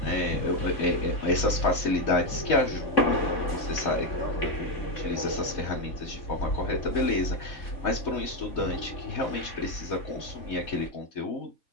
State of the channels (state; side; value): late; right; 3.1 ms